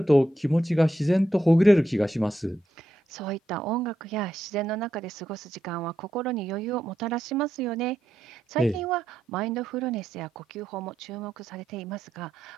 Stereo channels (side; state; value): both; normal; correlation 0.84